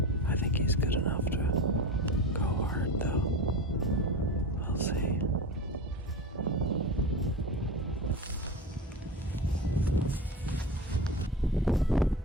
I think he's good enough to go hard though. We'll see.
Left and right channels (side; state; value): both; normal; correlation 0.27